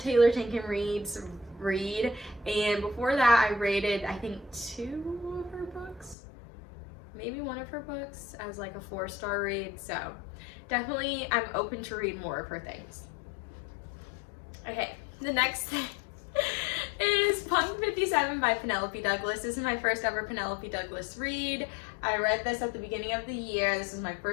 Tinkin read, and before that I rated I think 2 of her books, maybe 1 of her books as like a 4-star read. So definitely I'm open to read more of her things. Okay, the next thing is Punk 57 by Penelope Douglas. This is my first ever Penelope Douglas read. I read this at the beginning of the year. This is my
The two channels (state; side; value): drops out; right; at 6.2 s